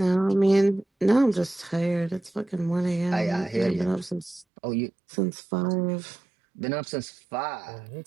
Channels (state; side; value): drops out; left; at 4.5 s